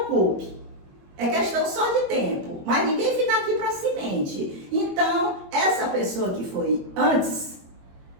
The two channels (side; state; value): left; late; 22 ms